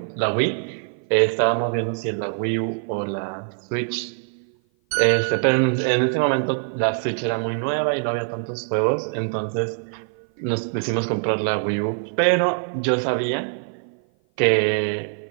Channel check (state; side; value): silent; left; 55 dB below the other